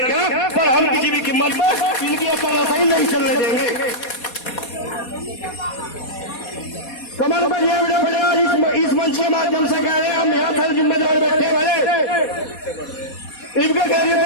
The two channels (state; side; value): late; right; 4.2 ms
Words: पर हम किसी भी कीमत पर इनकी तरह ही नहीं चलने देंगे। कमल पर यह बड़े इस मंच के माध्यम से कह रहे हैं, हम यहाँ फिर जिम्मेदार बैठे वाले, इनके कह रहे